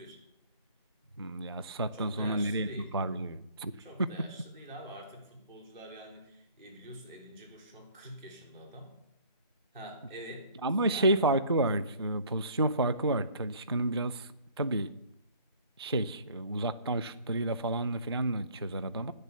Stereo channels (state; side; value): inverted; both; correlation -0.54